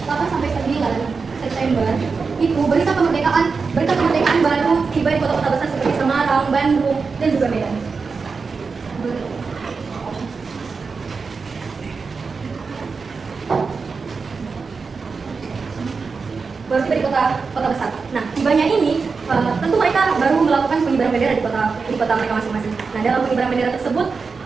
8 sampai 9 September itu berita kemerdekaan baru tiba di kota-kota besar seperti Semarang, Bandung, dan juga Medan. Baru tiba di kota besar. Nah, tibanya ini tentu mereka baru melakukan pengibaran bendera di kota mereka masing-masing. Nah, dalam pengibaran bendera tersebut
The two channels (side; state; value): left; quieter; 4.8 dB